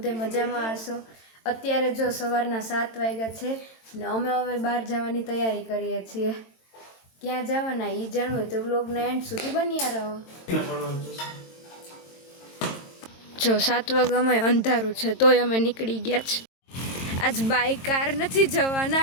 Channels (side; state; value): right; late; 22 ms